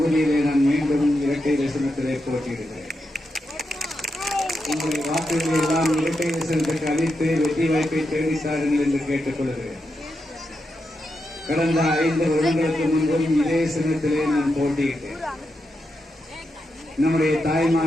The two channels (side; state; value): both; normal; correlation 0.86